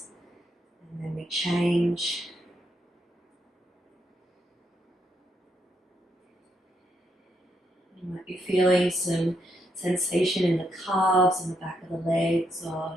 And then we change. You might be feeling some sensation in the calves and the back of the legs,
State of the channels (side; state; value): both; normal; correlation 0.78